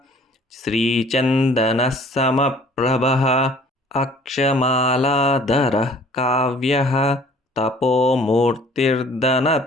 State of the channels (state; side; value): normal; both; correlation 0.52